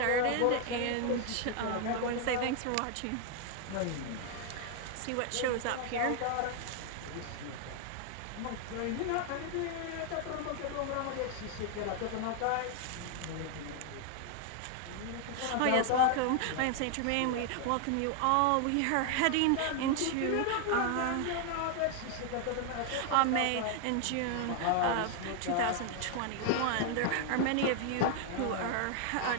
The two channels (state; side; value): different; both; correlation 0.00